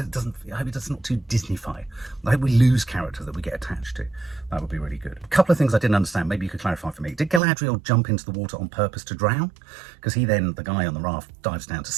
I hope it's not too Disney-fied. I hope we lose characters that we get attached to. That would be really good. A couple of things I didn't understand. Maybe you could clarify for me. Did Galadriel jump into the water on purpose to drown? Because the guy on the raft, dives down to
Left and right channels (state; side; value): drops out; left; at 7.4 s